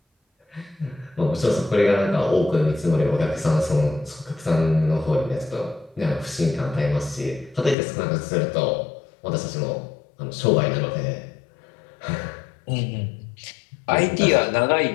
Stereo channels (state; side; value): drops out; right; at 7.8 s